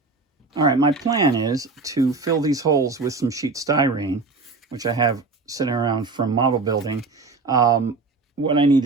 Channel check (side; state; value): left; quieter; 3.9 dB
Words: All right, my plan is to fill these holes with some sheet styrene, which I have sitting around from model building. What I need